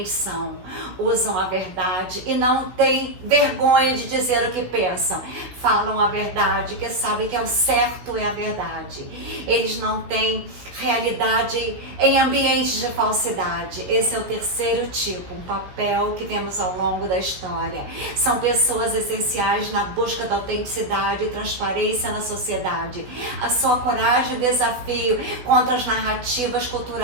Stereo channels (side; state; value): left; late; 16 ms